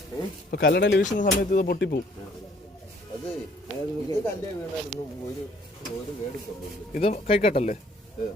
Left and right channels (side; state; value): both; normal; correlation 0.60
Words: ഇപ്പൊ കല്ലടയിൽ വീശുന്ന സമയത്ത് ഇത് പൊട്ടിപ്പോവും. അത് ഇത് കല്ലേ വീണായിരുന്നു. ഒരു കേടുപ്പുണ്ട്. ഇത് കൈക്കട്ടല്ലേ?